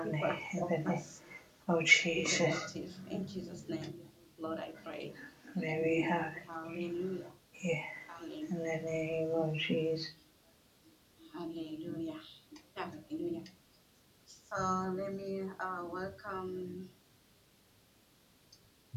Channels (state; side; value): identical; both; correlation 1.00